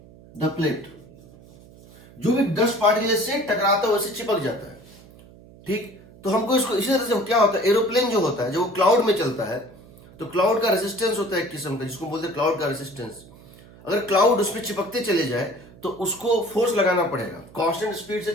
the plate। जो भी डस्ट पार्टिकल से टकराता है वो इससे चिपक जाता है। ठीक, तो हमको इसको इसी तरह से क्या होता है, एरोप्लेन जो होता है जब वो क्लाउड में चलता है तो क्लाउड का रेजिस्टेंस होता है एक किस्म का, जिसको बोलते हैं क्लाउड का रेजिस्टेंस। अगर क्लाउड उस पर चिपकते चले जाए तो उसको फोर्स लगाना पड़ेगा, कांस्टेंट स्पीड से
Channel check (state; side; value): noise; right; hum, 22 dB below the sound